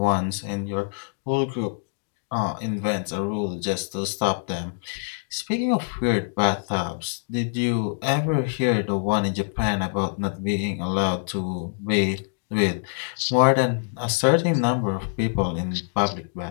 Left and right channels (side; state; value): right; silent; digital silence